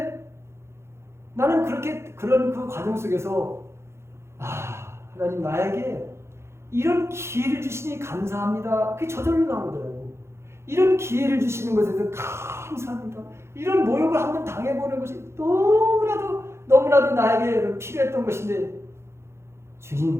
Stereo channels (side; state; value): left; late; 0.13 ms